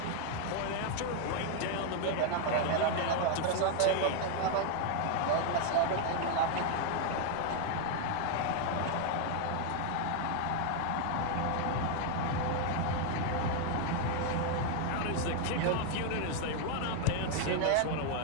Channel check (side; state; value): both; different; correlation 0.00